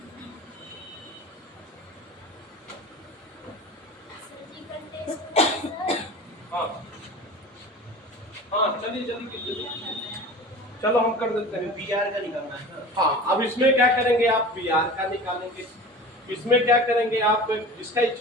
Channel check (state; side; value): normal; both; correlation 0.36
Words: हाँ हाँ चलिए जल्दी चलो हम कर देते हैं। PR का निकालना है। हाँ अब इसमें क्या करेंगे आप? Br का निकालेंगे। इसमें क्या करेंगे आप? जिसका